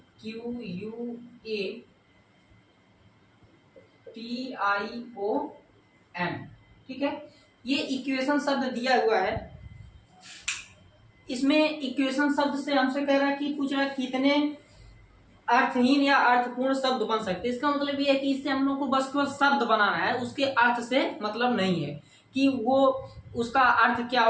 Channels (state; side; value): identical; both; correlation 1.00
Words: ठीक है, ये इक्वेशन शब्द दिया हुआ है। इसमें इक्वेशन शब्द से हमसे कह रहा है कि पूछ रहा है कितने अर्थहीन या अर्थपूर्ण शब्द बन सकते हैं। इसका मतलब ये है कि इससे हम लोग को बस केवल शब्द बनाना है, उसके अर्थ से मतलब नहीं है कि वो उसका अर्थ क्या